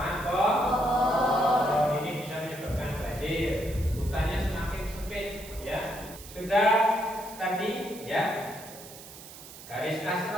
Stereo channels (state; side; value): noise; right; hiss, 16 dB below the sound